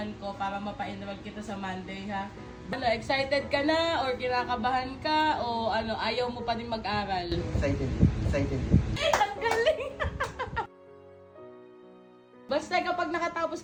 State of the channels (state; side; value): identical; both; correlation 1.00